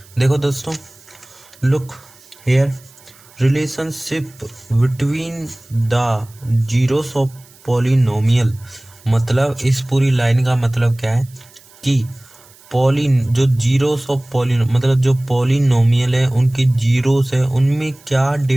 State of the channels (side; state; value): right; noise; hiss, 26 dB below the sound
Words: देखो दोस्तों, look here, relationship between the zeros of polynomial, मतलब इस पूरी line का मतलब क्या है कि जो जीरोस ऑफ पॉलिनो मतलब जो पॉलिनोमियल है उनके जीरोस है उनमें क्या